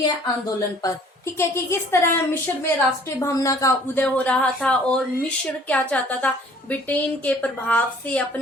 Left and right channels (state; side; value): normal; both; correlation 0.54